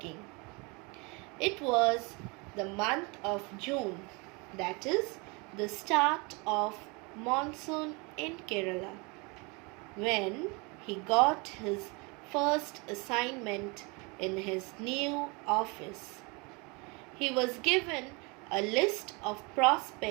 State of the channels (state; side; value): quieter; left; 28.9 dB